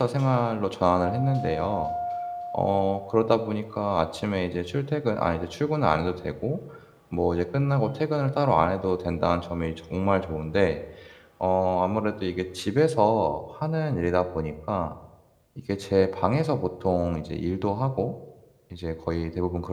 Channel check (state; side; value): identical; both; correlation 1.00